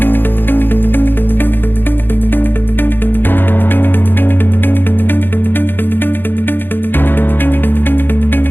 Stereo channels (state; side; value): late; right; 0.098 ms